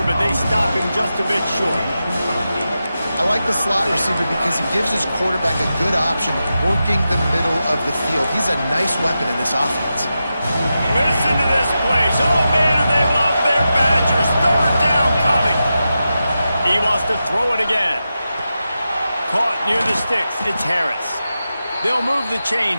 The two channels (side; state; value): both; inverted; correlation -0.91